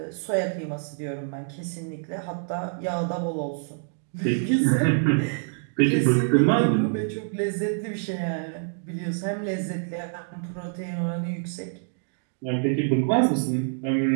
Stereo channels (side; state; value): left; silent; digital silence